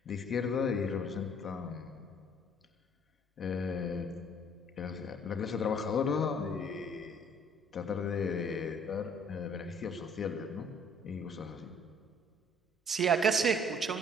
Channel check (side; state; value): both; normal; correlation 0.58